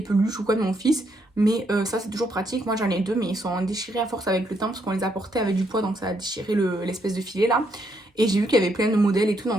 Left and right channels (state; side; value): normal; both; correlation 0.75